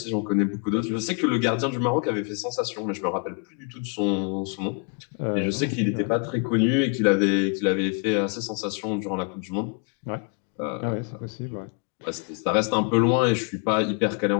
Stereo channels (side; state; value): right; quieter; 35.9 dB